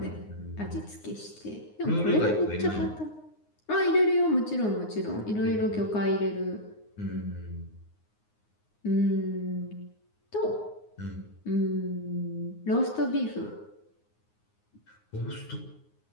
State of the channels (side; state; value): right; late; 9.6 ms